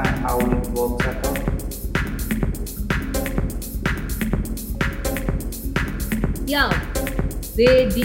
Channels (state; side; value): identical; both; correlation 1.00